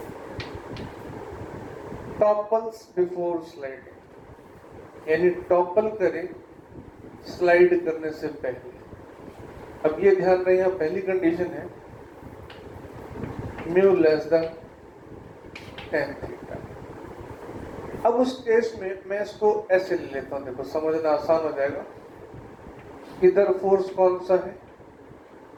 टॉपल्स बिफोर स्लाइडिंग, यानी टॉपल करे स्लाइड करने से पहले। अब ये ध्यान रहे, यहाँ पहली कंडीशन है mu less then tan theta. अब उस केस में मैं इसको ऐसे ले लेता हूं, देखो समझना आसान हो जाएगा। इधर फोर्स कौन सा है?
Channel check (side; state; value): both; identical; correlation 1.00